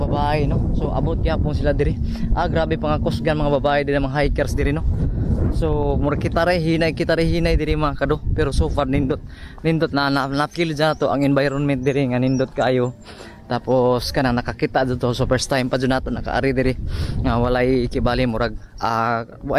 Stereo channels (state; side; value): identical; both; correlation 1.00